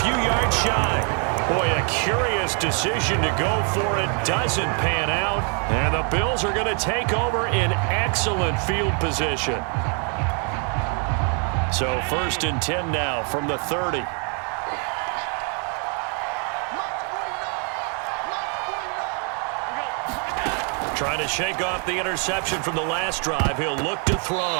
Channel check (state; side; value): quieter; left; 39.4 dB